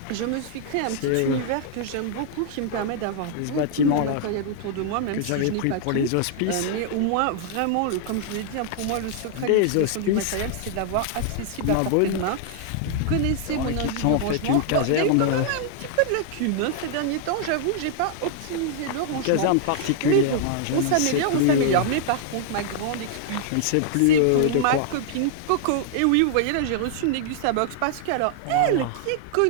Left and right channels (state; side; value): different; both; correlation -0.01